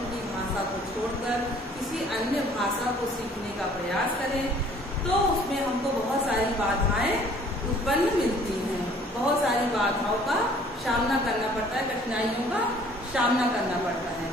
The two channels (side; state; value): both; normal; correlation 0.56